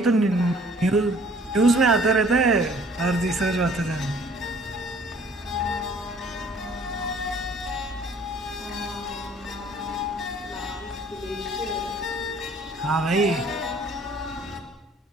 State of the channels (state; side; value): normal; both; correlation 0.56